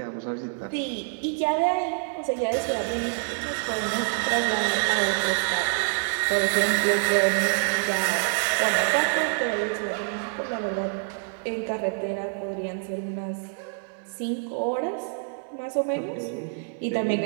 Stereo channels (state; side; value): silent; left; 61 dB below the other